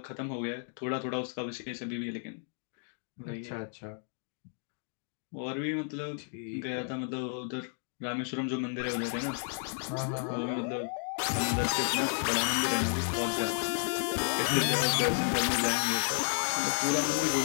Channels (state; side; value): silent; right; 56 dB below the other